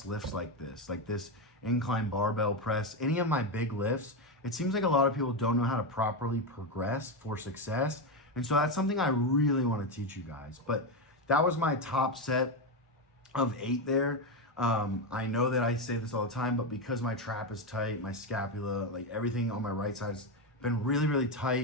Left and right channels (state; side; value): normal; both; correlation 0.10